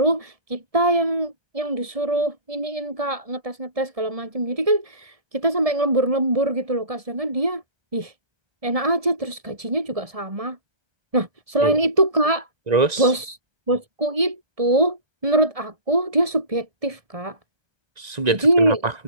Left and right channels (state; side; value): late; left; 1.7 ms